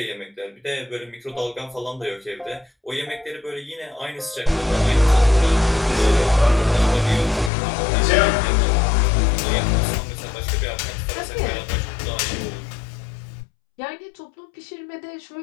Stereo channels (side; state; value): right; drops out; at 7.5 s